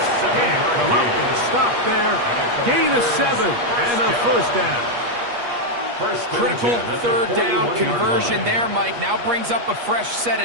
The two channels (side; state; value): left; late; 8.4 ms